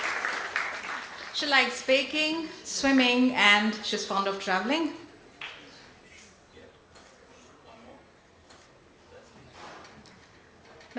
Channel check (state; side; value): identical; both; correlation 1.00